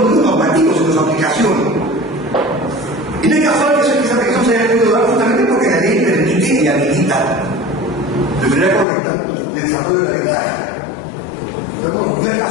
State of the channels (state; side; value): drops out; right; at 8.8 s